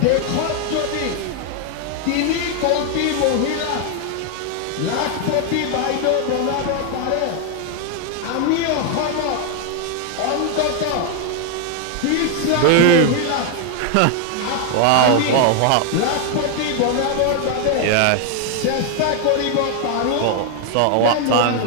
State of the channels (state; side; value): different; both; correlation 0.00